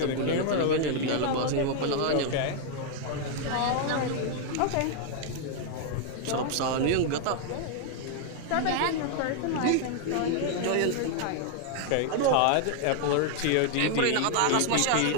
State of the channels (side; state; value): both; different; correlation 0.00